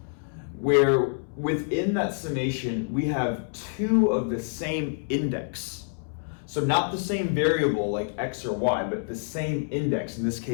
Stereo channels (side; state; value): right; silent; 60 dB below the other